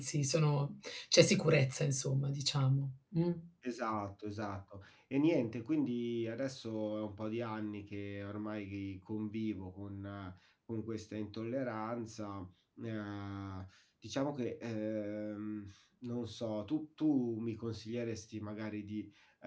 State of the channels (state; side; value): identical; both; correlation 1.00